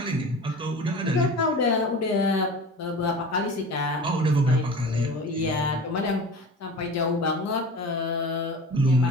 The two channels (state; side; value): normal; both; correlation 0.36